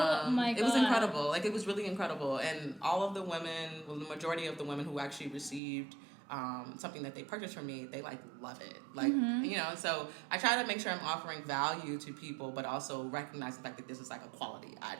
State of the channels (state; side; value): drops out; left; at 5.6 s